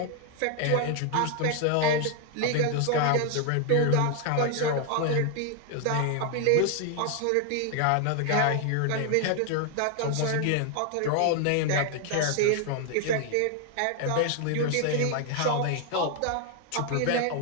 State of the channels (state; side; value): different; both; correlation 0.01